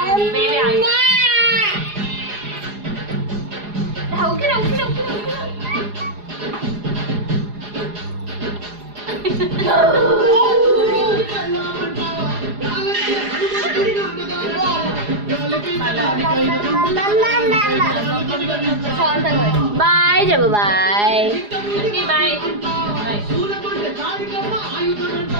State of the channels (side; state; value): left; late; 4.9 ms